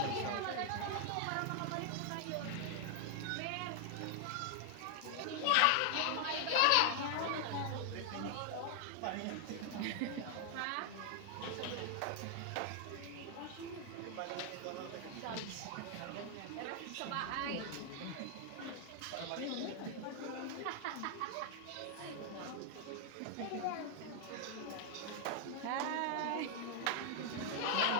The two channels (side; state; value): both; different; correlation 0.00